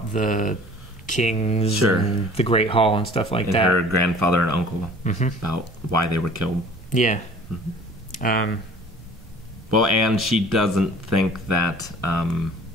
the kings and the Great Hall and stuff like that. Her grandfather and uncle, about why they were killed. Yeah. Well, and she doesn't think that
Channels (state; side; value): normal; both; correlation 0.47